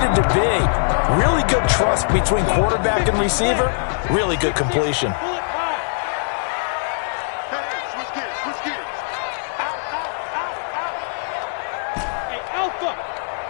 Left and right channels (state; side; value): silent; right; 63 dB below the other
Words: to be. Really good trust between quarterback and receiver. Really good completion.